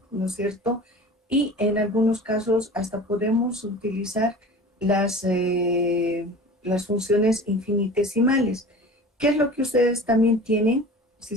¿no es cierto?, y en algunos casos hasta podemos utilizar las funciones infinitesimales. ¿Qué es lo que ustedes también tienen, si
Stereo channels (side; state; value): both; normal; correlation 0.39